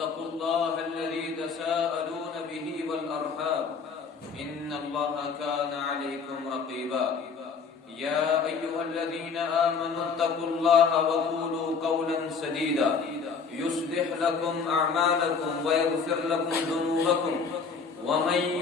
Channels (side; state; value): right; quieter; 5.4 dB